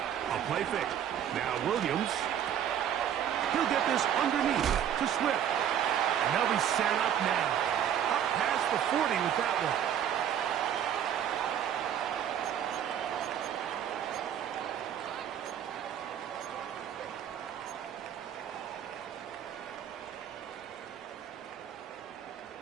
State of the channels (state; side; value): quieter; left; 9.6 dB